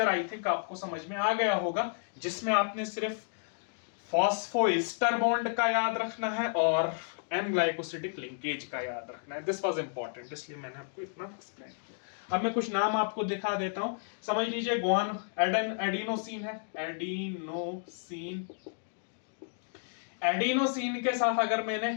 आई थिंक आपको समझ में आ गया होगा, जिसमें आपने सिर्फ फॉस्फोएस्टर बॉन्ड का याद रखना है और एन ग्लाइकोसिडिक लिंकेज का याद रखना है। दिस वाज इंपॉर्टेंट, इसलिए मैंने आपको इतना एक्सप्लेन किया। अब मैं कुछ नाम आपको दिखा देता हूं, समझ लीजिए। एडिनोसिन है, एडिनोसिन। एडिनोसिन के साथ अगर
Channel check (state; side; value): silent; right; digital silence